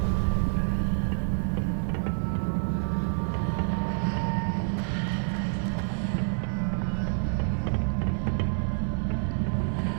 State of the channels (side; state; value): left; silent; 60 dB below the other